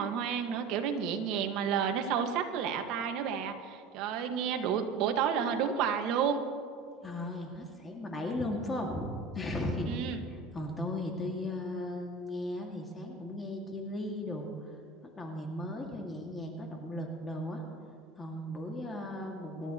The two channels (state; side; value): quieter; left; 3.9 dB